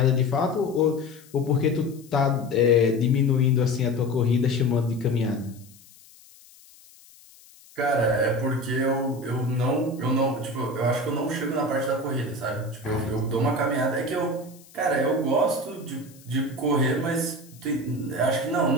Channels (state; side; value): noise; left; hiss, 25 dB below the sound